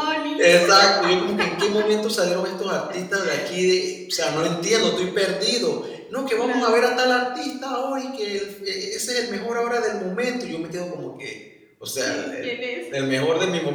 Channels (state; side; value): identical; both; correlation 1.00